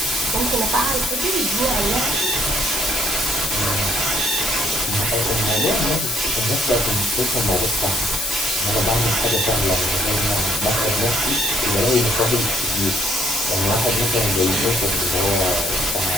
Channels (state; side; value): noise; left; hiss, 3 dB below the sound